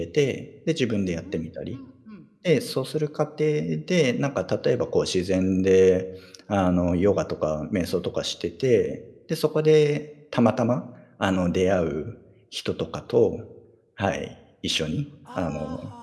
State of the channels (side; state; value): both; identical; correlation 1.00